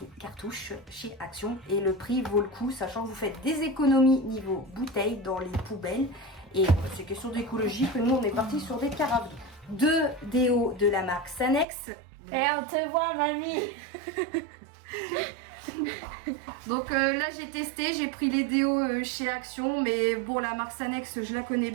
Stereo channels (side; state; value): left; drops out; at 11.7 s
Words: cartouches chez Action. Et le prix vaut le coup, sachant que vous faites des économies niveau bouteilles dans les poubelles. Et c'est question d'écologie que nous on est parti sur des carafes. 2 déos de la marque Sanex. Et on te voit mamie. Donc là j'ai testé, j'ai pris les déos chez Action, mais bon la marque Sanex je la connais